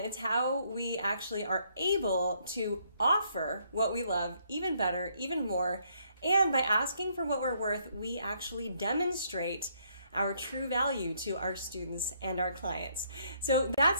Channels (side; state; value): both; inverted; correlation -0.70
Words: how we actually are able to offer what we love even better, even more. And by asking for what we're worth, we actually demonstrate our true value to our students and our clients. So that's